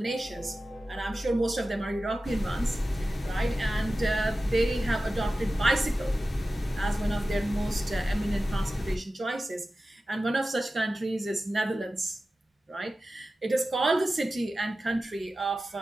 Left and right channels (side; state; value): both; normal; correlation 0.94